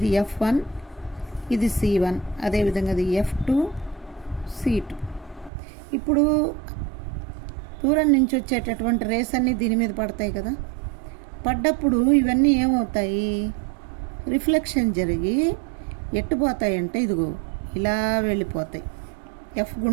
F1, ఇది C1, అదేవిధంగా అది F2, C2. ఇప్పుడు దూరం నుంచి వచ్చేటటువంటి రేస్ అన్నీ దీని మీద పడతాయి కదా, పడ్డప్పుడు ఇవన్నీ ఏమవుతాయి, రిఫ్లెక్షన్ జరిగి ఎట్టుపోతాయి అంటే ఇదిగో ఇలా వెళ్ళిపోతాయి, F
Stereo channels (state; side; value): drops out; left; at 5.5 s